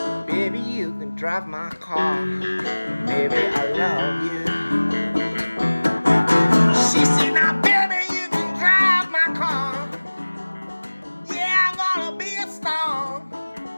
Baby, you can drive my car. Baby, I love you. She said, now baby, you can drive my car. Yeah, I'm gonna be a star.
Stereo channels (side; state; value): both; inverted; correlation -1.00